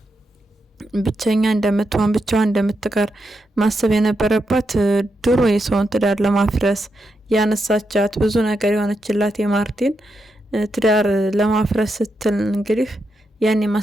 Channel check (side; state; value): both; normal; correlation 0.84